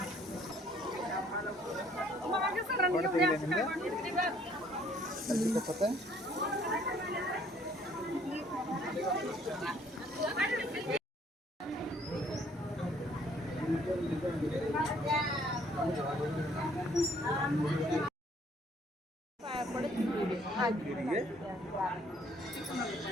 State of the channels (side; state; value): both; normal; correlation 0.61